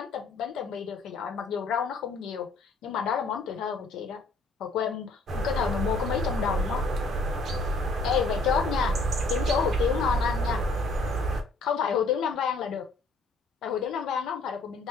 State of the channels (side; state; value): right; quieter; 3.1 dB